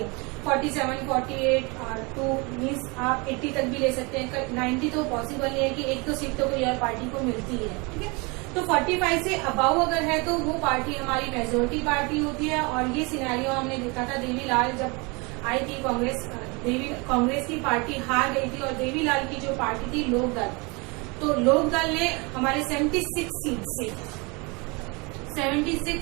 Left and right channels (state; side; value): quieter; left; 28.5 dB